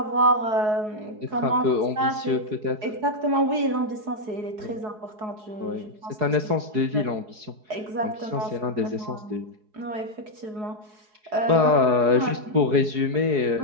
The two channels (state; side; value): late; left; 4.7 ms